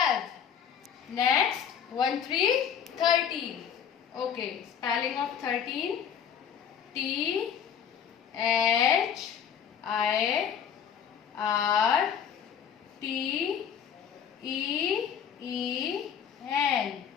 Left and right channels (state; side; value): quieter; right; 8.1 dB